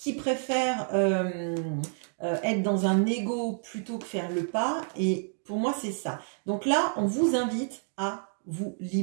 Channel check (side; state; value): left; silent; 57 dB below the other